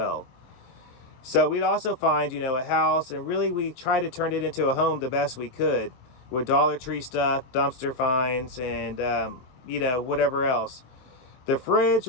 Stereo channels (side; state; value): right; late; 23 ms